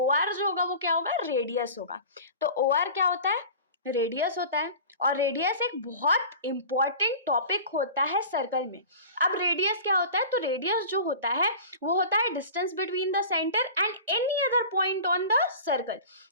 आर जो होगा वो क्या होगा? रेडियस होगा। तो ओ आर क्या होता है? रेडियस होता है। और रेडियस एक बहुत इंपॉर्टेंट टॉपिक होता है सर्कल में। अब रेडियस क्या होता है? तो रेडियस जो होता है वो होता है distance between the centre and any other point on the circle.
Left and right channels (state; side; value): inverted; both; correlation -0.37